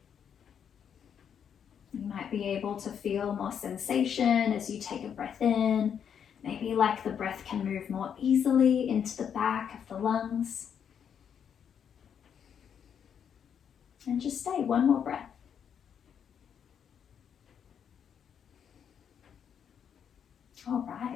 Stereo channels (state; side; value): quieter; right; 8.0 dB